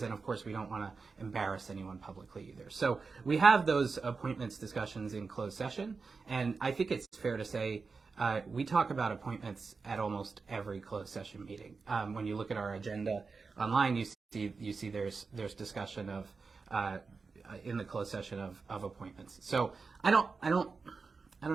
And of course, we don't want to embarrass anyone publicly either. So we have those appointments discussions in closed session. And I think it's fair to say we talk about appointments at almost every closed session meeting. When you look at our agenda online, you see there's discussion of in the closed session of appointments. So I don't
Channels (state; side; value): quieter; left; 4.6 dB